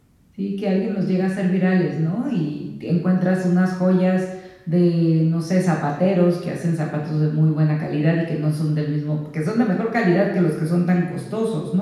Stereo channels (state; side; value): identical; both; correlation 1.00